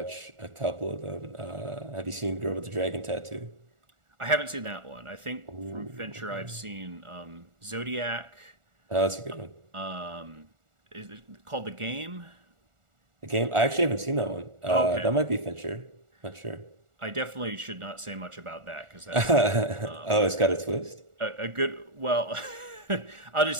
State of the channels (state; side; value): late; left; 1.4 ms